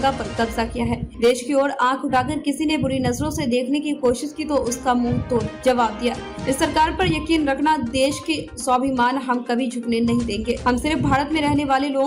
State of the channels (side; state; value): both; identical; correlation 1.00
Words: पर कब्जा किया है। देश की ओर आंख उठाकर किसी ने बुरी नजरों से देखने की कोशिश की तो उसका मुंह तोड़ जवाब दिया। इस सरकार पर यकीन रखना, देश के स्वाभिमान हम कभी झुकने नहीं देंगे। हम सिर्फ भारत में रहने वाले